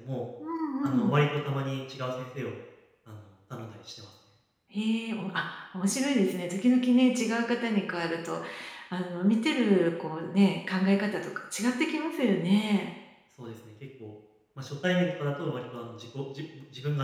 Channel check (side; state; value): both; identical; correlation 1.00